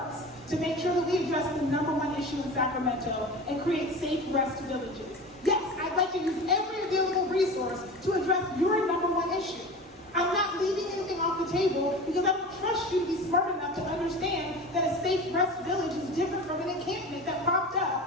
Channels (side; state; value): both; normal; correlation 0.33